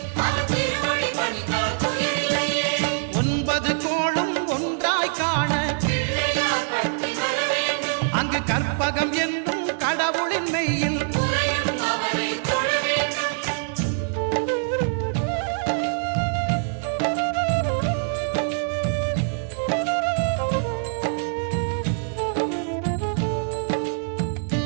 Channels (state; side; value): silent; left; digital silence